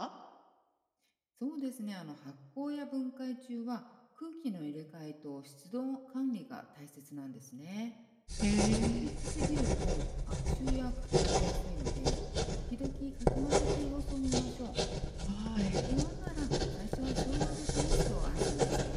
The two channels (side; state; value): both; identical; correlation 1.00